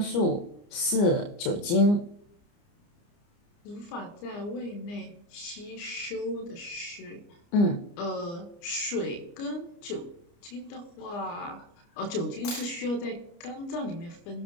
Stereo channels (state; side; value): late; right; 29 ms